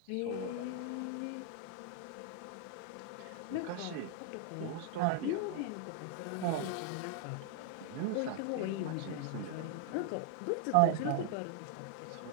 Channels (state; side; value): different; both; correlation 0.00